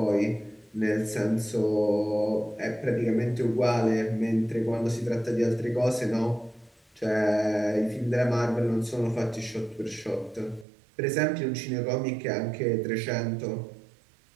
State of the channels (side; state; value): left; drops out; at 10.7 s